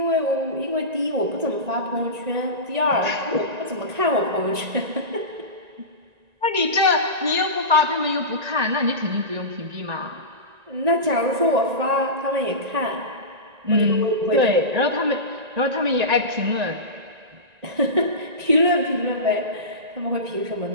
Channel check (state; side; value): late; left; 1.9 ms